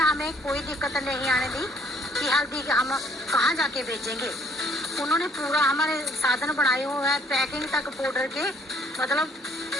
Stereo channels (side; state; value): both; normal; correlation 0.62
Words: हमें कोई दिक्कत नहीं आने दी कि हल्दी हम कहाँ जाके बेचेंगे। उन्होंने पूरा हमारे साधन बनाए हुए हैं, पैकिंग तक पाउडर के, मतलब